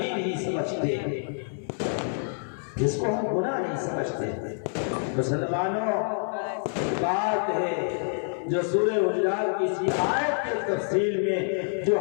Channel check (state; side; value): silent; right; 60 dB below the other